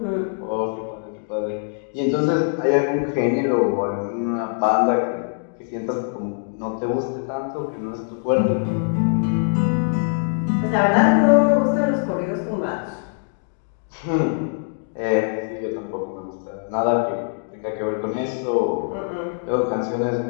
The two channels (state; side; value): silent; right; 64 dB below the other